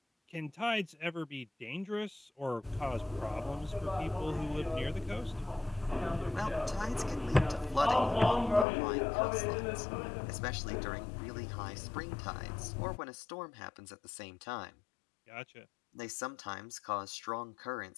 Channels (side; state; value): right; drops out; at 8.7 s